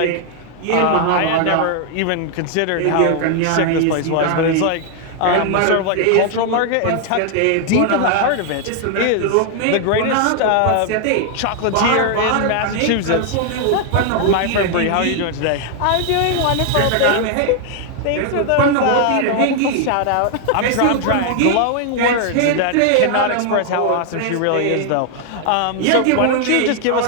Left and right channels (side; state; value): both; different; correlation 0.00